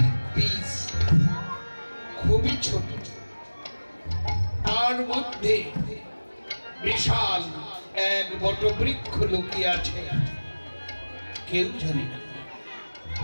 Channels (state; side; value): inverted; both; correlation -1.00